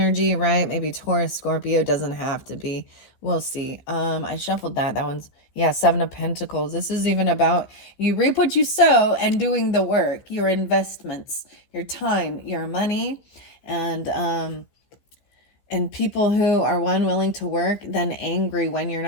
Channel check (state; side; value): late; right; 15 ms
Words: right? Maybe Taurus, Scorpio, doesn't have to be. We'll see. I shuffled that. That one's, Seven of Pentacles. This is even about you reap what you sow and doing the work, your investments, your time, your money, and people who are willing to work, then angry when you're